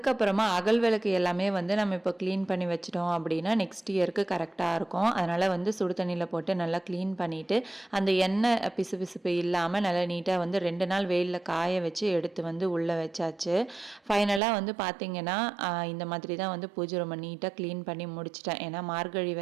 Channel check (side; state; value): left; drops out; at 14.4 s